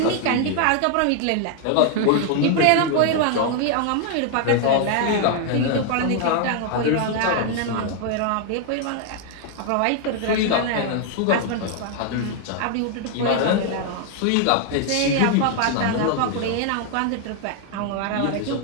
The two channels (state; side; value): different; both; correlation 0.00